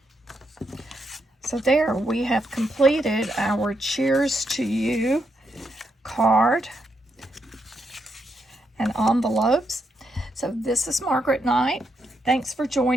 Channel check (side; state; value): both; normal; correlation 0.80